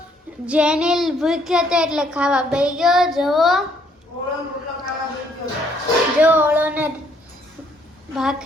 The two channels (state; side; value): normal; both; correlation 0.67